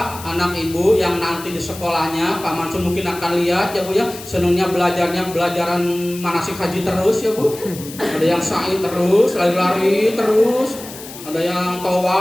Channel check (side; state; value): left; noise; hiss, 14 dB below the sound